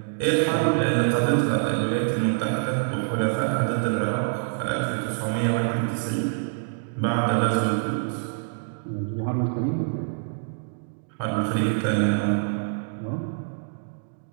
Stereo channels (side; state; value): left; silent; digital silence